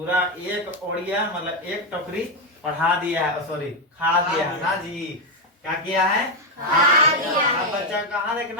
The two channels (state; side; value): normal; both; correlation 0.05